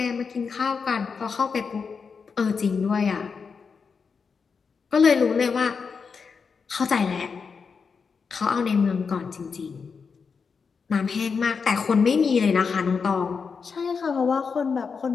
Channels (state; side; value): quieter; right; 5.5 dB